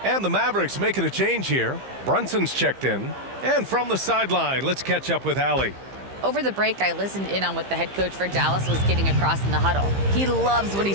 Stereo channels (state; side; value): late; left; 15 ms